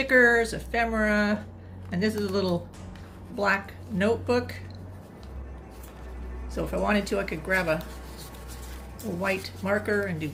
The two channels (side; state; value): both; identical; correlation 1.00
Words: ephemera, and this is a little black notebook. So if I wanted to, I could grab a white marker and do